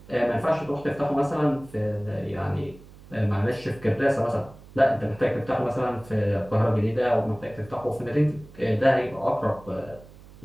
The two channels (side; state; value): right; noise; hum, 21 dB below the sound